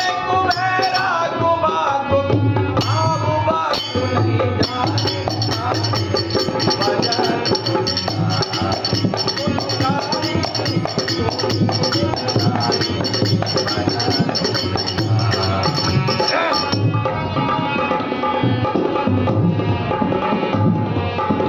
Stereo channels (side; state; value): both; identical; correlation 1.00